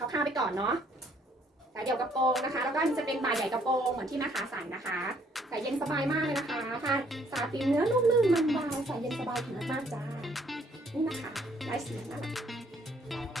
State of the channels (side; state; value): both; normal; correlation 0.65